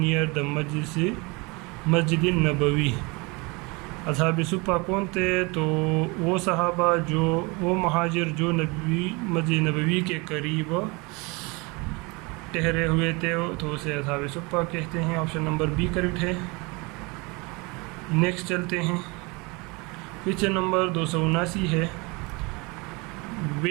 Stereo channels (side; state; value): left; quieter; 27.3 dB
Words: the Masjid Nabawi. اصحاب صفہ کون تھے, تو وہ صحابہ وہ مہاجر جو مسجد نبوی کے قریب ٹھہرے ہوئے تھے, تو اسے اصحاب صفہ کہتے ہیں. آپشن نمبر بی کریکٹ ہے. نیکسٹ چلتے ہیں. کویشچن نمبر 279 ہے